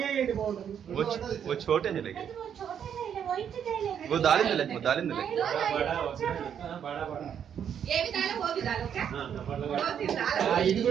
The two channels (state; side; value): quieter; left; 8.5 dB